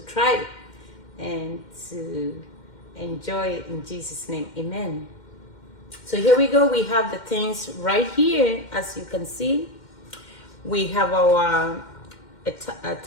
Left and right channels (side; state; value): right; late; 2.1 ms